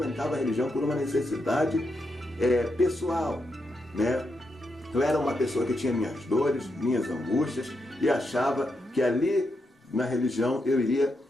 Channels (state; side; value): normal; both; correlation 0.83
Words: a religião por uma necessidade pessoal, né? Eu era uma pessoa que tinha minhas dores, minhas angústias e achava que ali na religião eu iria